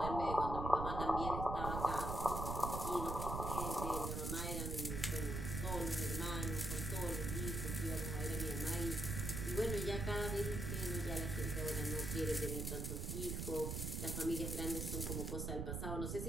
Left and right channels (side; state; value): right; noise; rumble, 2 dB below the sound